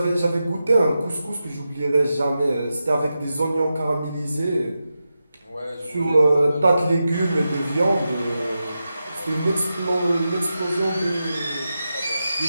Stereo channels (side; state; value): both; inverted; correlation -0.90